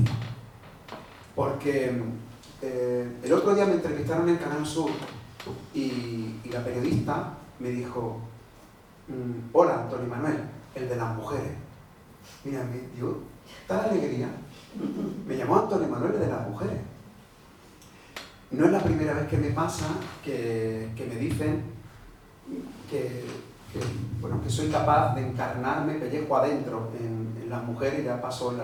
Porque el otro día me entrevistaron en Canal Sur y la periodista me dijo: hola, Antonio Manuel, el de las mujeres. Mira, me dio tal alegría. Me llamó Antonio Manuel, el de las mujeres. No es la primera vez que me pasa que me dicen que soy capaz de encarnarme pellejo adentro en las mujeres. Ya pasó en La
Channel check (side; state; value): both; identical; correlation 1.00